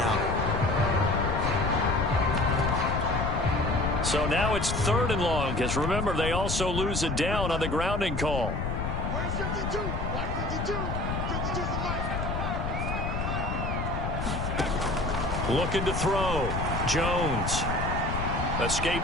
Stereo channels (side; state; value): left; noise; rumble, 2 dB below the sound